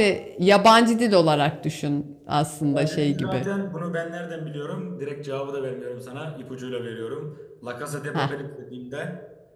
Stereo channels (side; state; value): both; identical; correlation 1.00